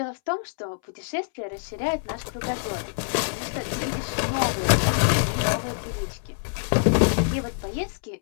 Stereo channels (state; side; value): silent; right; 61 dB below the other